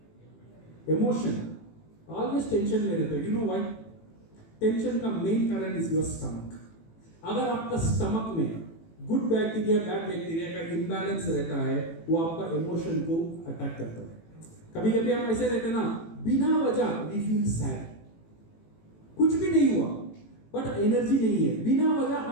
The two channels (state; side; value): late; right; 18 ms